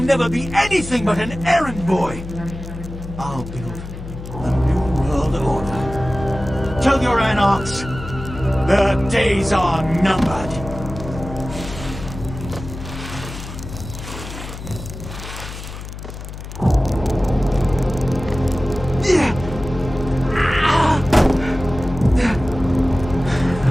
be anything but an errand boy! I'll build a new world order. Tell your anarchs, their days are numbered.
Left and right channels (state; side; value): noise; left; hum, 11 dB below the sound